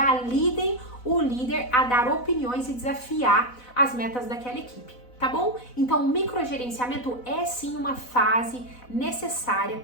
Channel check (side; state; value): right; late; 4.0 ms